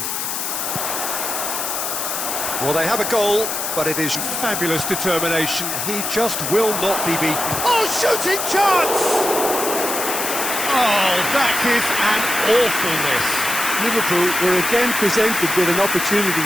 Well, they have a goal, but it is fabulous determination. He just will not be beaten. Oh, shooting chance! Oh, that is an awful miss. Liverpool were again presented with an opportunity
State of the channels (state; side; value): noise; left; hiss, 3 dB below the sound